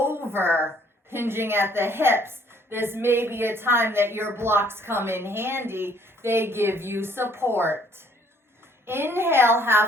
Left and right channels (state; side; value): normal; both; correlation 0.62